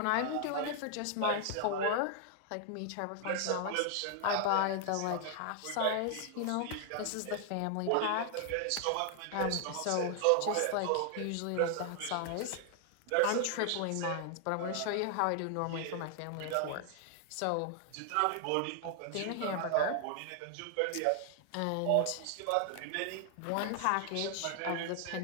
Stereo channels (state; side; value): different; both; correlation 0.00